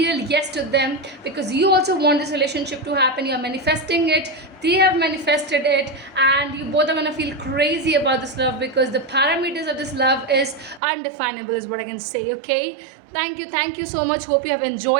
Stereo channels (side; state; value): left; drops out; at 10.8 s